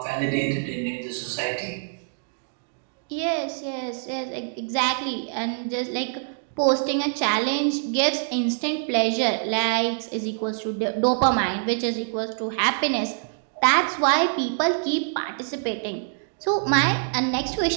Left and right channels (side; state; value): left; silent; digital silence